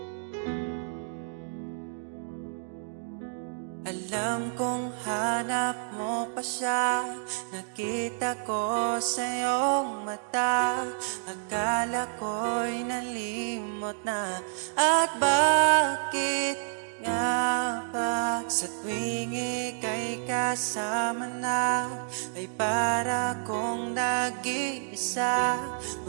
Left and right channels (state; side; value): silent; left; digital silence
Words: Alam kong hanap mo pa siya, nakita ko sa iyong mata. Akala ko'y nalimot na, at bakit nga ba sa tuwing ika'y kasama na ay para kong nag-iisa?